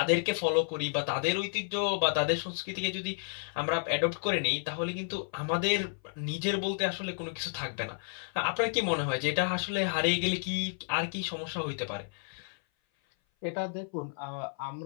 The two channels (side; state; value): right; silent; 56 dB below the other